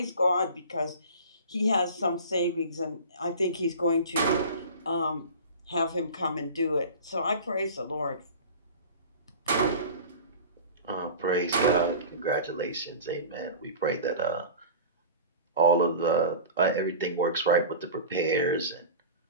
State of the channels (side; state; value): both; inverted; correlation -0.35